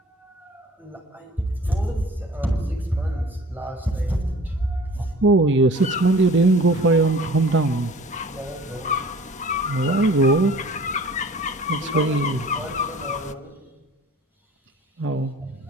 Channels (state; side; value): normal; both; correlation 0.46